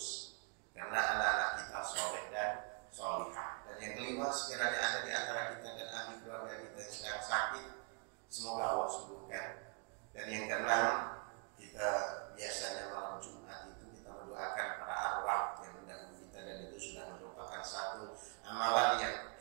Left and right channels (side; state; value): left; quieter; 37.4 dB